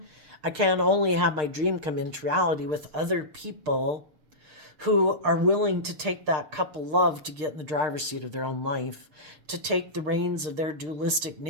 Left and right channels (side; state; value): left; late; 6.6 ms